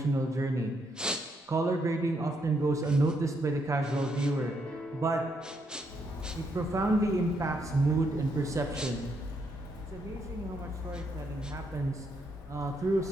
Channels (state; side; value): normal; both; correlation 0.76